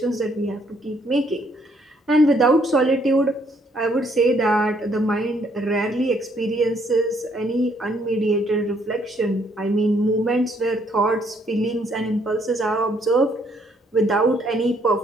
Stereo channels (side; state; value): both; normal; correlation 0.68